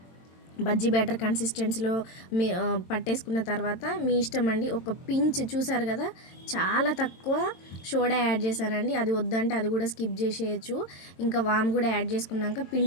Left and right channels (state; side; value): late; right; 22 ms